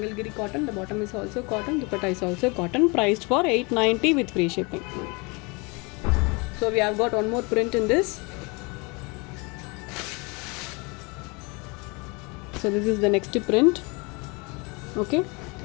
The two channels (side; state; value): right; quieter; 28.8 dB